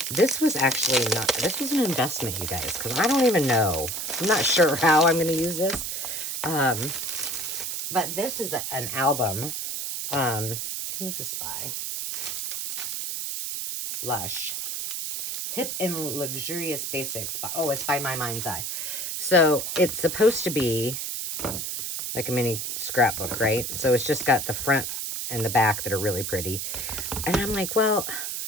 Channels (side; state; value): right; noise; hiss, 3 dB below the sound